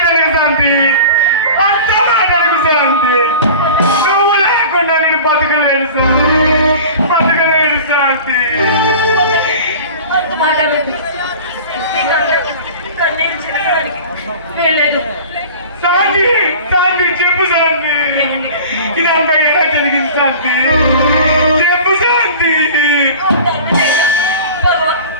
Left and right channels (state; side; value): inverted; both; correlation -0.39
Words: శాంతి అంత మాటలకు శాంతి నువ్వు లేకుండా నేను బతకలేను శాంతి బతకలేను శాంతి అంత మాట్లాడలేదు కన్నీరు చిరగడానికి వెళ్ళలేదు శాంతి శాంతి చెప్పు శాంతి ఇదంతా ఎలా జరిగింది శాంతి చెప్పు శాంతి భగవాన్